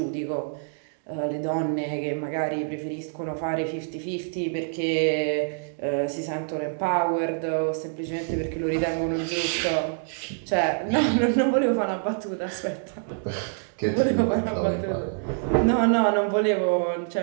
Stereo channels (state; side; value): silent; left; digital silence